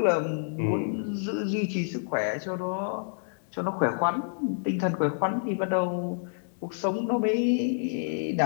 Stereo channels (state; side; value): silent; right; digital silence